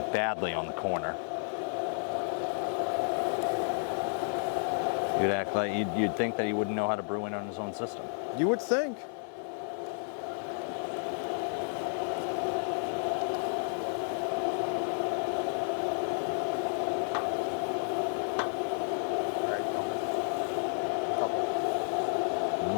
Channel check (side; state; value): right; silent; 57 dB below the other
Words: badly on the corner. You'd act like you'd think that he wouldn't know how to brew in on his own system. You would think.